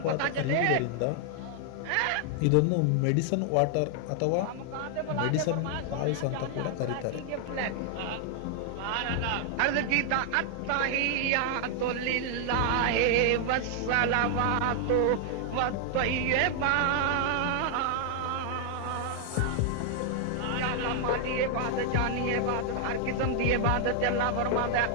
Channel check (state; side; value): different; both; correlation 0.00